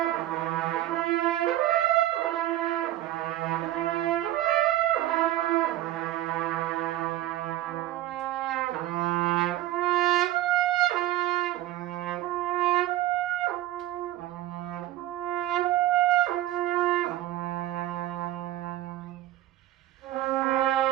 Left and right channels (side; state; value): left; quieter; 14.6 dB